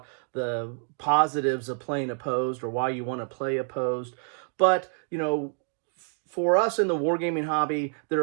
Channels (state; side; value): silent; left; 57 dB below the other